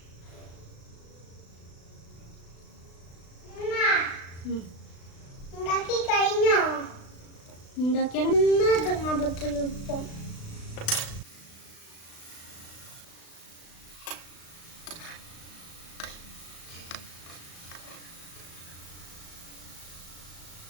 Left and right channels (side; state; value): right; late; 36 ms